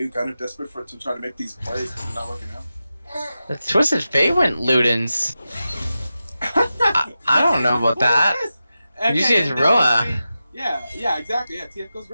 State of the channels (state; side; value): inverted; both; correlation -0.92